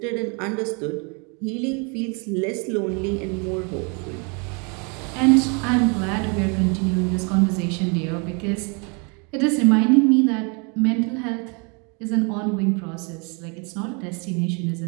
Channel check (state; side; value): quieter; left; 33.9 dB